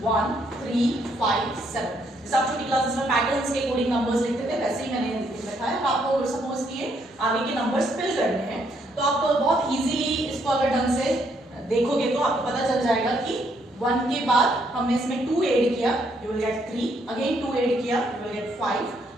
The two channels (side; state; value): both; normal; correlation 0.72